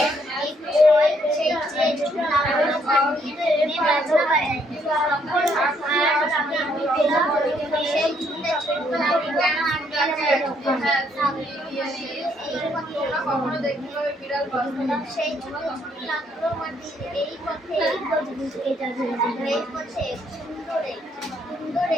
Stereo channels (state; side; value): normal; both; correlation 0.70